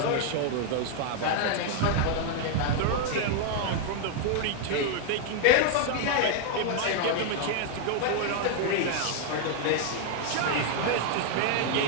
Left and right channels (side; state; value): both; different; correlation 0.00